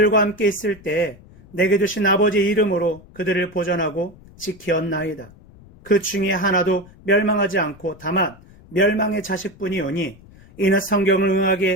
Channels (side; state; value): left; noise; rumble, 23 dB below the sound